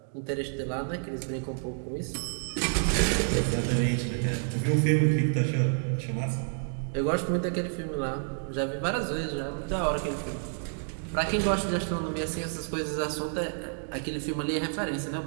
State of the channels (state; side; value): silent; left; digital silence